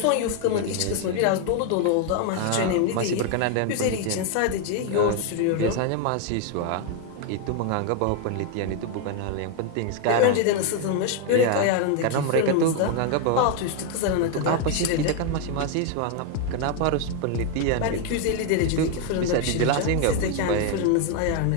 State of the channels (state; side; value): different; both; correlation 0.01